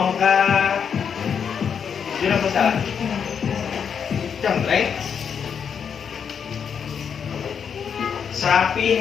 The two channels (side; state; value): right; quieter; 7.1 dB